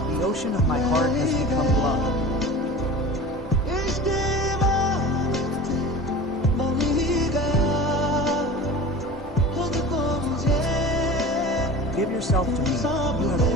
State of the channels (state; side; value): normal; both; correlation 0.37